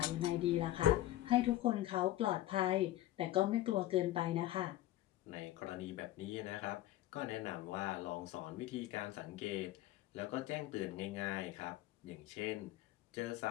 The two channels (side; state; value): right; quieter; 14.8 dB